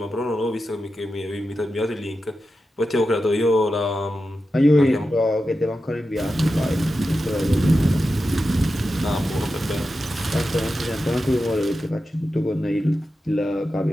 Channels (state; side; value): normal; both; correlation 0.91